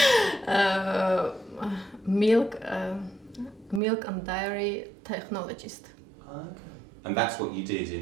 Milk and dairy technologist. Okay. And that's what you did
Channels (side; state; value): left; drops out; at 3.8 s